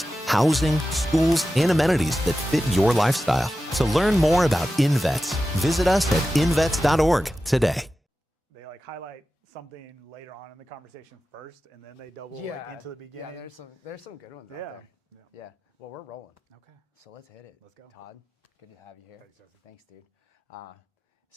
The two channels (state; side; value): normal; both; correlation 0.93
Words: housing, schools, and amenities that fit your lifestyle. To learn more about InVets, visit us at invets.org today. They like highlight something later on in the conversation first, and then they double into the beginning. Yeah, there's some good ones out there. Yeah. Well, we're rolling. Okay. So let's hit it. Let's go. Todd, good to have you here. Thanks, dude.